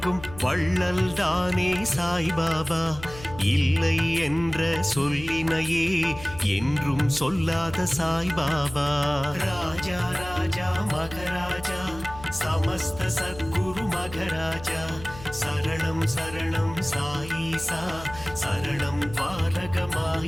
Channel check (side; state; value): left; noise; hum, 15 dB below the sound